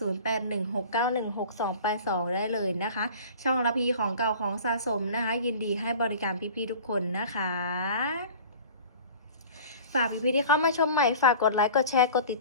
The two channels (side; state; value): both; inverted; correlation -0.42